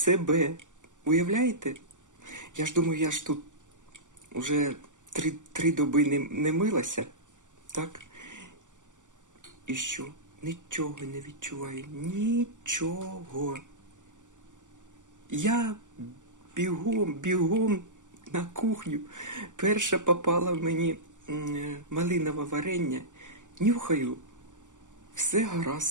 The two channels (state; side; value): late; left; 0.87 ms